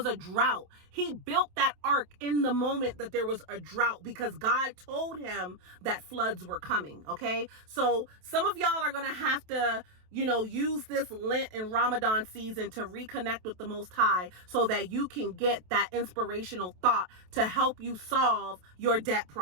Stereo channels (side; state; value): left; late; 27 ms